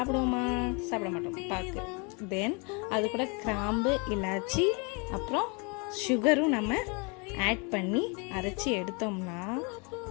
சாப்பிட மாட்டோம், பாக்கு. தென் அது கூட கிராம்பு, இலாச்சி, அப்புறம் சுகரும் நம்ம ஆட் பண்ணி அரைச்சி எடுத்தோம்னா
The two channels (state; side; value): quieter; right; 32.5 dB